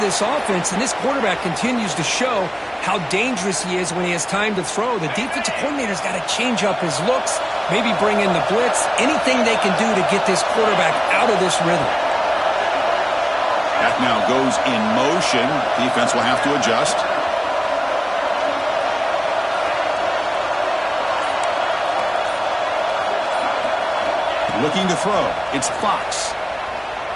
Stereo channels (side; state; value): both; identical; correlation 1.00